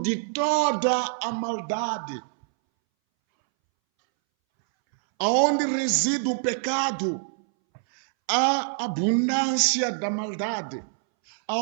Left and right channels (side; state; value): left; silent; 62 dB below the other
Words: de toda a maldade. Aonde reside o pecado, há abundância da maldade.